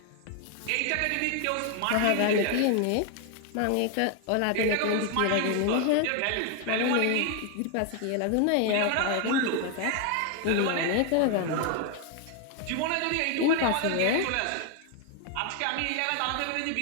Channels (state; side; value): different; both; correlation 0.00